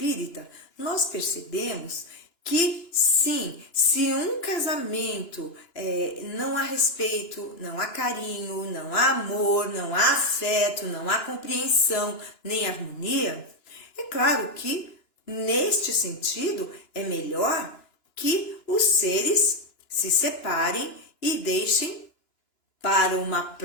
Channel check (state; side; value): late; right; 2.9 ms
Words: nós percebemos que sim, se um casamento não há respeito, não há carinho, não há amor, não há afeto, não há compreensão, nem harmonia, é claro que neste sentido é melhor que os seres se separem e deixem para uma